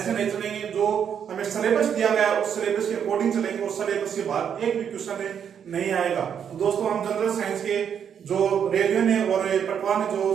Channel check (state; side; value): quieter; left; 8.1 dB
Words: नहीं चलेंगे। जो हमें सिलेबस दिया गया है उस सिलेबस के अकॉर्डिंग चलेंगे और सिलेबस के बाद एक भी क्वेश्चन नहीं आएगा। तो दोस्तों हम जनरल साइंस के जो रेडियो ने और पटवार ने जो